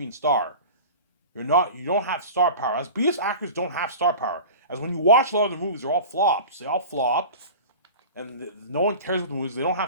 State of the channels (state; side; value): inverted; both; correlation -0.35